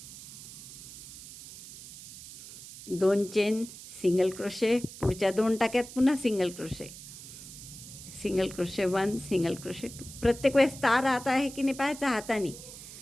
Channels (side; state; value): right; noise; hiss, 14 dB below the sound